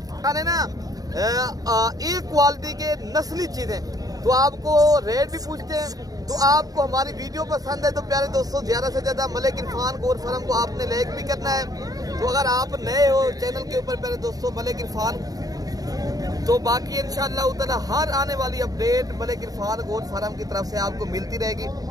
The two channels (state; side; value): late; left; 0.18 ms